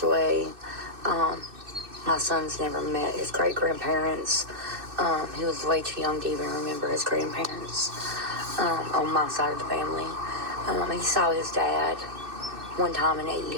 away. My son's never met his great-grandparents. He was way too young to even remember his grandparents on my side of the family. He saw his dad one time in 8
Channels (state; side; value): late; left; 2.6 ms